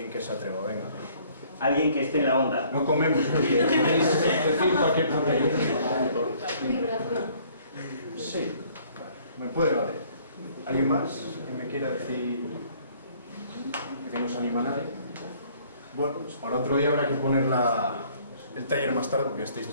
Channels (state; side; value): inverted; both; correlation -0.59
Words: que se atreva, venga. Alguien que esté en la onda. No comemos, podéis decir cualquier cosa. Sí, me puede valer. ¿Alguien más que me quiera decir que no se anima a nadie? Bueno, pues para otro día habrá que poner el taller más tarde porque estáis